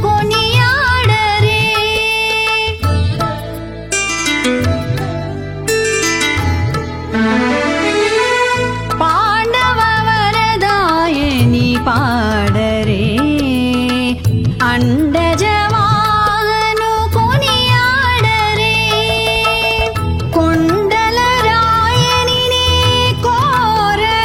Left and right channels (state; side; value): identical; both; correlation 1.00